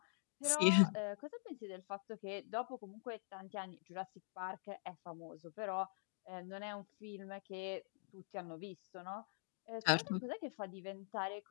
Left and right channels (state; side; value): silent; right; digital silence